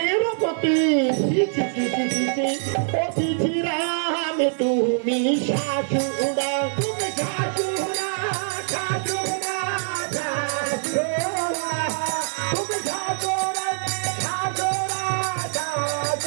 পতি। অতিথি রামে তুমি শাশুড়া, তুমি শাশুড়া, শাশুড়া, শাশুড়া, তুমি শাশুড়া, শাশুড়া,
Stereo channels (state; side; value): silent; left; 63 dB below the other